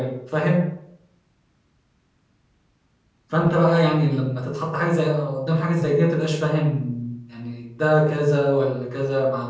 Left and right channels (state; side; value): identical; both; correlation 1.00